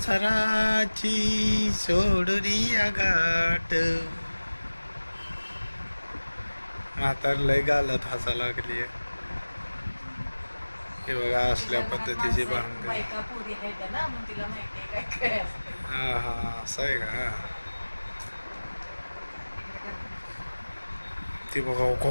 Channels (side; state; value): both; inverted; correlation -1.00